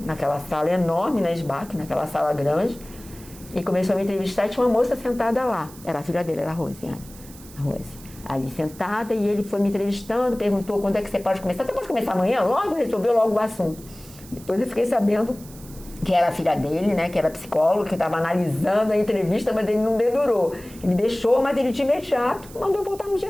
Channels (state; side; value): noise; right; hiss, 20 dB below the sound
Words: sala enorme na SBAC, naquela sala grande, e começou a me entrevistar. E tinha uma moça sentada lá, era a filha dele, era a Rosiane, a Rose, ali sentada, e ele foi me entrevistando, perguntou quando é que você pode começar. Você pode começar amanhã? Logo, resolveu logo o assunto. Depois eu fiquei sabendo que era a filha dele, né, que era psicólogo, que estava analisando a entrevista, mas ele não dedurou. Ele deixou, mas ele de imediato mandou voltar no dia